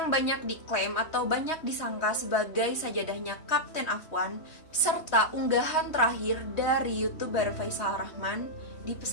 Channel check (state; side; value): late; right; 3.1 ms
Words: banyak diklaim atau banyak disangka sebagai sajadahnya Kapten Afwan, serta unggahan terakhir dari YouTuber Faisal Rahman di